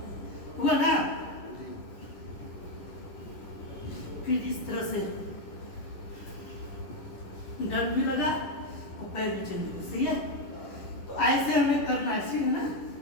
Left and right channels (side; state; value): right; late; 10 ms